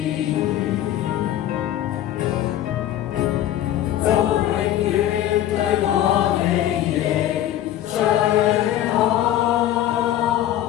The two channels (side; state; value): right; quieter; 12.3 dB